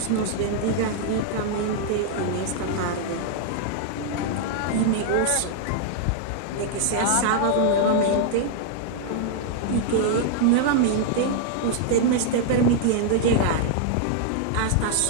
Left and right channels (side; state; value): both; different; correlation -0.01